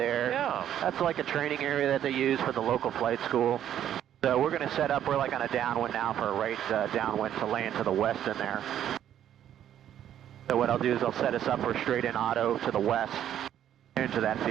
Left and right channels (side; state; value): left; quieter; 10.7 dB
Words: Yeah. That's like a training area that they use for the local flight school. So we're going to set up, we're like on a downwind now for a right downwind to land to the west in there. So what I'll do is I'll set us up for straight in auto to the west into that